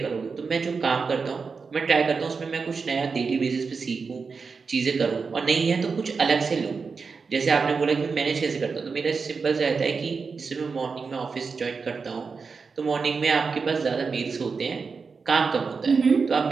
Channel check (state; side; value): quieter; left; 5.0 dB